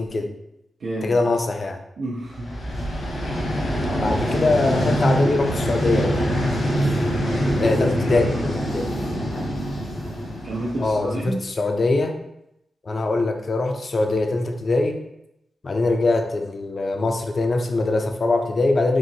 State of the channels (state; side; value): normal; both; correlation 0.90